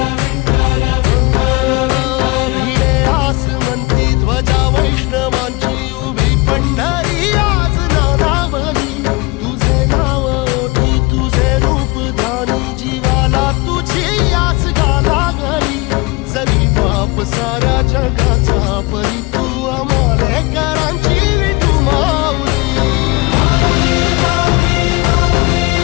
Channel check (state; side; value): quieter; right; 24.8 dB